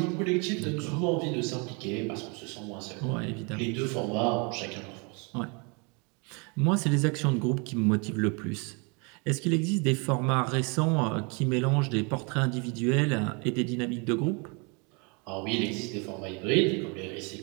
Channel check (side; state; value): left; quieter; 32.1 dB